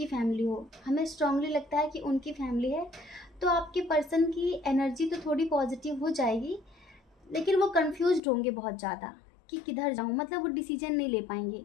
फैमिली हो, हमें स्ट्रांगली लगता है कि उनकी फैमिली है, तो आपके पर्सन की एनर्जी तो थोड़ी पॉजिटिव हो जाएगी, लेकिन वो कंफ्यूज्ड होंगे बहुत ज़्यादा कि किधर जाऊँ। मतलब वो डिसीजन नहीं ले पाएंगे,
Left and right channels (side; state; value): right; drops out; at 8.2 s